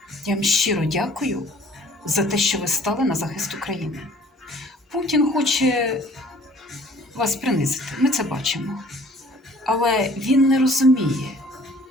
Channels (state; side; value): normal; both; correlation 0.53